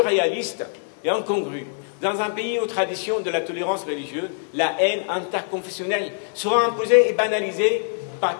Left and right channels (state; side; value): silent; right; 63 dB below the other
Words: et incongrus. Dans un pays aux traditions de la tolérance religieuse, la haine interconfessionnelle sera imposée et banalisée par